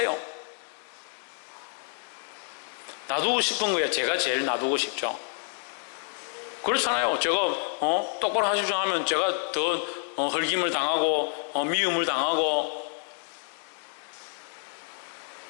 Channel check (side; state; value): right; silent; 56 dB below the other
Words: 놔두고 싶은 거야. 제가 제일 놔두고 싶죠. 그렇잖아요. 제가 똑바로 하십시오 하면 제가 더 헐김을 당하고 미움을 당하고.